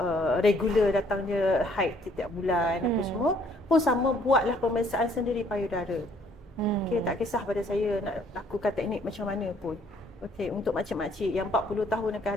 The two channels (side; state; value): both; normal; correlation 0.63